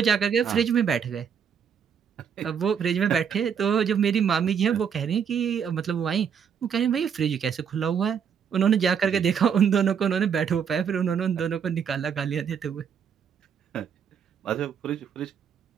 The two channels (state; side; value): quieter; left; 7.5 dB